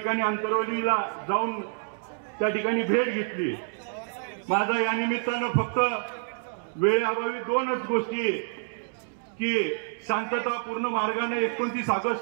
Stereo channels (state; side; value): silent; left; digital silence